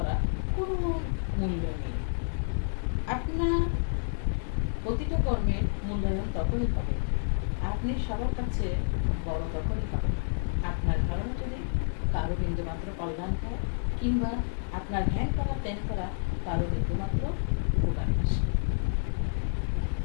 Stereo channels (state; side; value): silent; right; digital silence